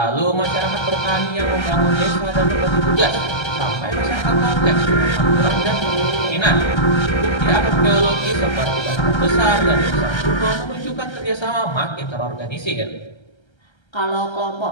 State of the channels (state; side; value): late; right; 1.3 ms